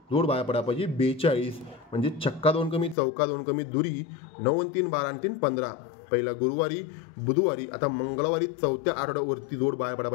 जोड बाहेर पडा पाहिजे 42 म्हणजे छक्का 2 कमी चौका 2 कमी दुरी 9 3 12 3 15 पहिला गुरुवारी बुधवारी आता मंगळवारी चौथ्या आठवड्यावरती जोड बाहेर पडा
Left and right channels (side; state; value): right; drops out; at 3.0 s